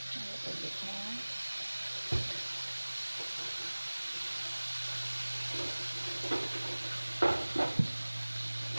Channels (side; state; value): both; inverted; correlation -1.00